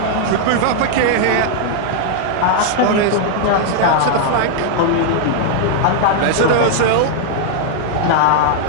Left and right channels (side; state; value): both; different; correlation 0.00